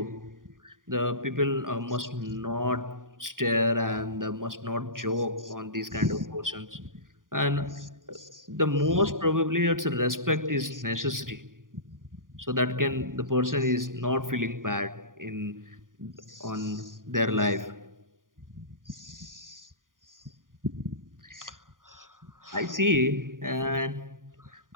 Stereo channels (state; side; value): late; left; 0.90 ms